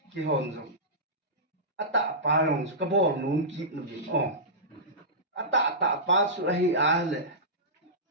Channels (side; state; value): both; normal; correlation -0.17